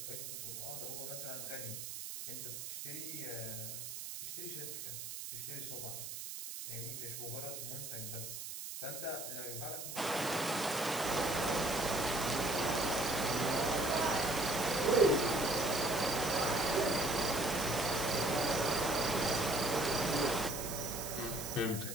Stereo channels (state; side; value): noise; right; hiss, 7 dB below the sound